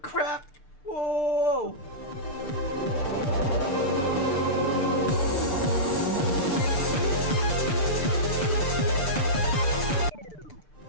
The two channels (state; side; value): late; right; 6.7 ms